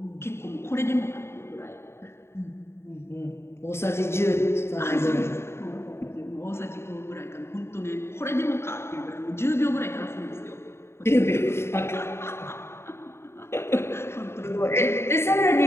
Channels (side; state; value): right; late; 0.12 ms